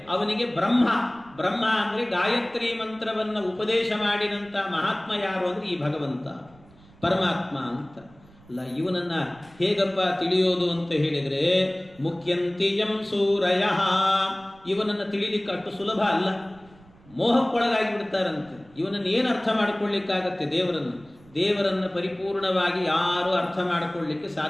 ಅವನಿಗೆ ಬ್ರಹ್ಮ. ಬ್ರಹ್ಮ ಅಂದರೆ ಗಾಯತ್ರಿ ಮಂತ್ರವನ್ನು ಉಪದೇಶ ಮಾಡಿದಂಥ ಮಹಾತ್ಮ ಯಾರು ಅಂದರೆ ಈ ಭಗವಂತ ಪರಮಾತ್ಮ ಅಂತ. ಅಲ್ಲ, ಇವನನ್ನ ಹೇಗಪ್ಪ ತಿಳಿಯೋದು ಅಂತ ಹೇಳಿದರೆ ಮುಖ್ಯಂತಿಯಂ ಸೂರಯ. ಇವನನ್ನು ತಿಳಿಲಿಕ್ಕೆ ಅಷ್ಟು ಸುಲಭ ಅಲ್ಲ, ಮೋಹಕ್ಕೊಳಗಾಗಿ ಬಿಡ್ತಾರಂತೆ. ಇವನನ್ನು ಏನು ಅರ್ಥ ಮಾಡಿಕೊಳ್ಳಿಕ್ಕಾಗತ್ತೆ? ದೇವರನ್ನು ಪರಿಪೂರ್ಣವಾಗಿ ಯಾರೂ ಅರ್ಥ ಮಾಡಿಕೊಳ್ಳಿಕ್ಕೆ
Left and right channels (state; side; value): noise; right; rumble, 26 dB below the sound